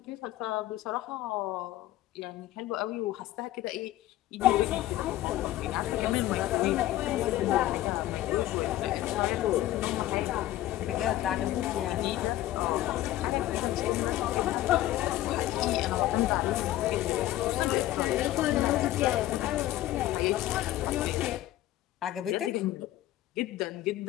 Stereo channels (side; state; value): right; quieter; 14.7 dB